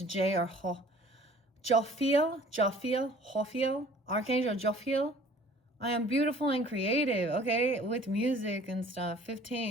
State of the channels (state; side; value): normal; both; correlation 0.51